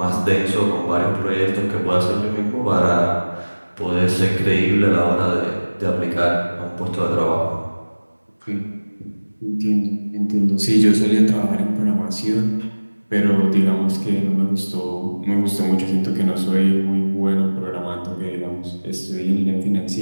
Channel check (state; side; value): inverted; both; correlation -1.00